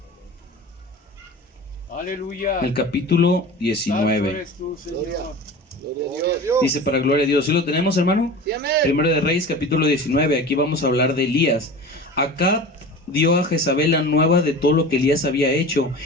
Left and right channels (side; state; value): both; normal; correlation 0.35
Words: Aleluya. El capítulo Santo 19. eres tú, Señor. Gloria a Dios. Dice para gloria a Dios. ¿Sí lo tenemos, hermano? Sí, amén. Primera de Reyes, capítulo 19. Aquí vamos a hablar de Elías. Acá dio a Jezabel la nueva de todo lo que Elías había hecho